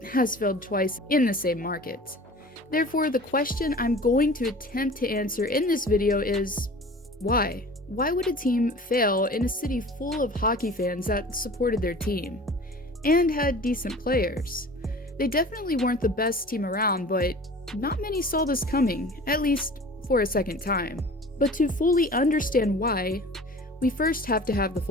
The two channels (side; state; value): both; normal; correlation 0.42